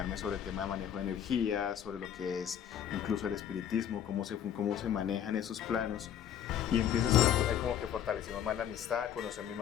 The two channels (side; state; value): right; quieter; 9.7 dB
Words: sobre el tema de manejo de energía, sobre lo que es incluso el espiritismo, cómo se manejan esos planos. Y empiezas a como que fortalecimos más la amistad, conocí a mi